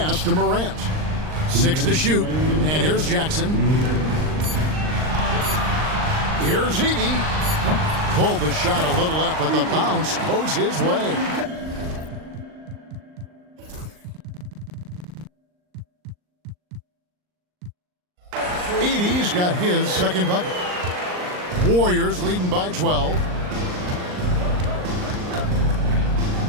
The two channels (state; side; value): late; left; 39 ms